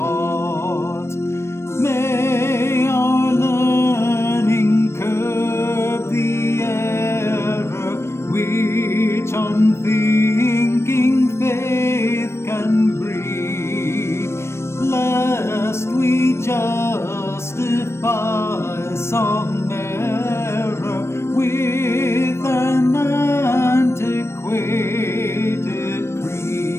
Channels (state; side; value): late; right; 0.13 ms